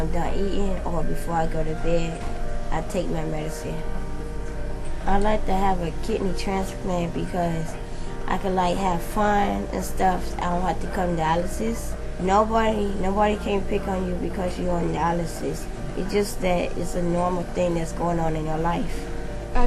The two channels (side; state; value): both; identical; correlation 1.00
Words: done eating or before I go to bed, I take my medicine. I like to have a kidney transplant because I can like have fun and stuff. I don't have to come to dialysis. Nobody can pick on you because you're on dialysis. It's just that it's a normal thing that's going on in your life.